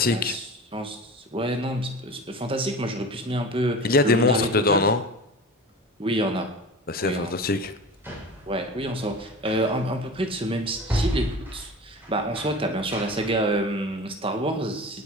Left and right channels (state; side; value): normal; both; correlation 0.34